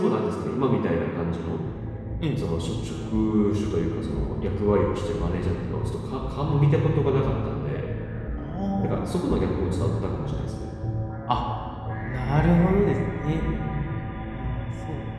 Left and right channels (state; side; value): identical; both; correlation 1.00